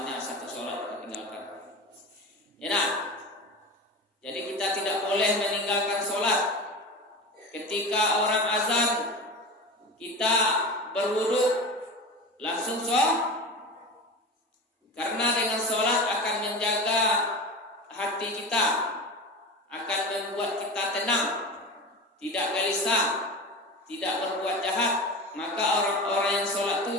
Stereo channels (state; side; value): normal; both; correlation 0.28